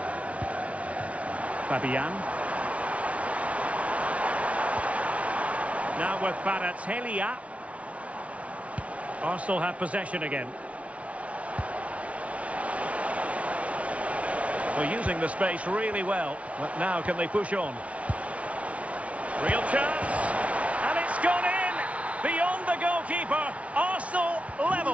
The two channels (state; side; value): late; left; 0.064 ms